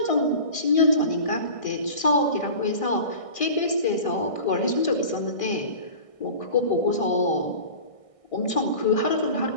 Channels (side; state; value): right; late; 1.6 ms